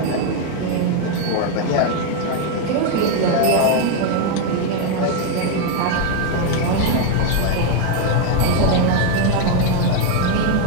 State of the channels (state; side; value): different; both; correlation 0.01